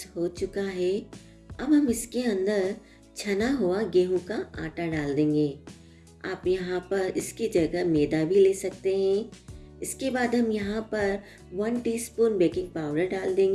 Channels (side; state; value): both; identical; correlation 1.00